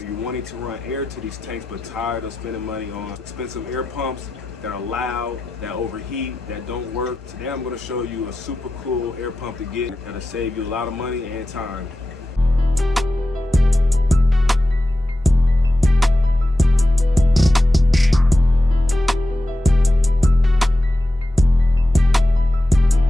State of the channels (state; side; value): normal; both; correlation 0.91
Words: wanting to run air to these tanks but tired of spending money on expensive air pumps that are loud, that overheat, that don't work. Today I'm going to show you a super cool air pump to get that'll save you a lot of money and time.